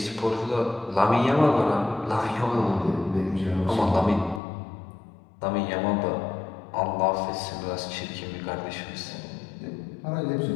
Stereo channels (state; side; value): drops out; right; at 4.4 s